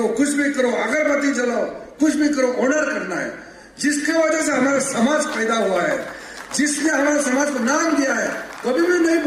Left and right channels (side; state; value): both; identical; correlation 1.00